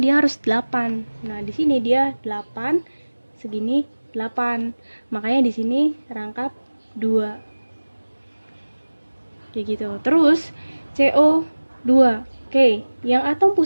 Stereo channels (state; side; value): inverted; both; correlation -1.00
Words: dia harus 8. Nah, di sini dia 8, segini 8. Makanya di sini rangkap 2. Kayak gitu. Terus CO2. Yang atom